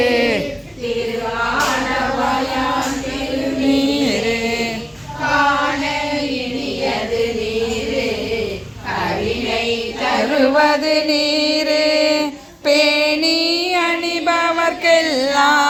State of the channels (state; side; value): identical; both; correlation 1.00